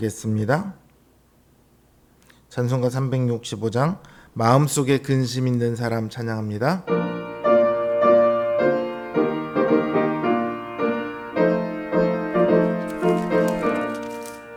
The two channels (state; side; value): identical; both; correlation 1.00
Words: 찬송가 365장 마음속에 근심 있는 사람 찬양합니다.